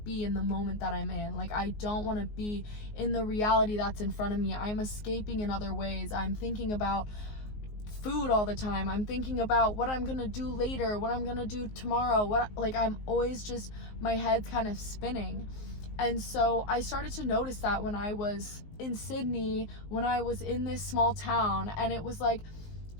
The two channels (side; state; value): right; late; 19 ms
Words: in the moment that I'm in. Like I don't want to be in the reality that's in front of me. I'm escaping in other ways. I'm thinking about food all the time. I'm thinking about what I'm gonna do later, what I'm gonna do tomorrow, like I'm always just, my head's kind of spinning. And so I started to notice that when I was in Sydney, when I was in this small town, and it was like